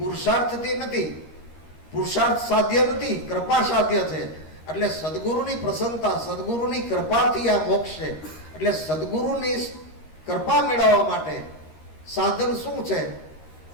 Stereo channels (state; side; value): late; right; 13 ms